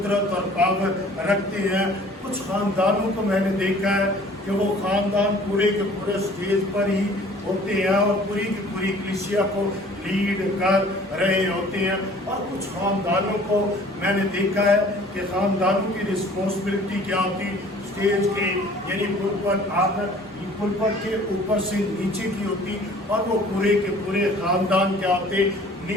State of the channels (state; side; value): normal; both; correlation 0.51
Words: और पावर रखते हैं। कुछ खानदानों को मैंने देखा है कि वो खानदान पूरे के पूरे स्टेज पर ही होते हैं और पूरी की पूरी कलीसिया को लीड कर रहे होते हैं। और कुछ खानदानों को मैंने देखा है कि खानदानों की रिस्पॉन्सिबिलिटी क्या होती, स्टेज के यानी पुलपट के ऊपर से नीचे की होती, और वो पूरे के पूरे खानदान क्या होते,